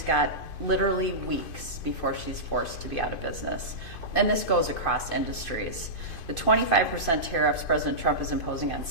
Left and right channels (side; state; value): right; late; 2.5 ms